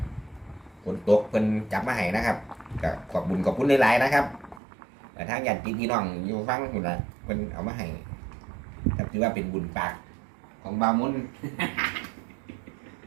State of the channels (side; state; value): left; drops out; at 4.6 s